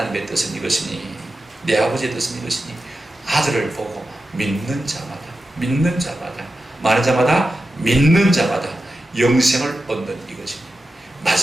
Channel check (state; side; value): normal; both; correlation 0.92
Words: 뜻은 이것이니 내 아버지의 뜻은 이것이니 아들을 보고 믿는 자마다 많은 자마다 믿는 자마다 영생을 얻는 이것이니